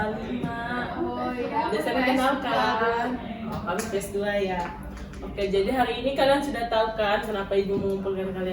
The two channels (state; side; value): identical; both; correlation 1.00